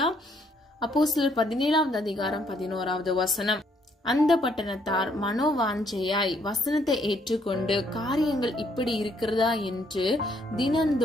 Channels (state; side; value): normal; both; correlation 0.69